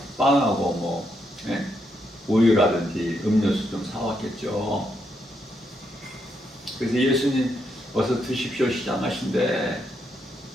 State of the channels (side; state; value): both; normal; correlation 0.79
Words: 빵하고 뭐 우유라든지 음료수 좀 사왔겠죠. 그래서 예수님 어서 드십시오 시장하신데,